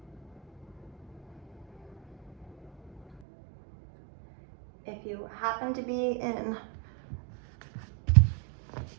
If you happen to be in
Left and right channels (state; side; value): drops out; left; at 3.2 s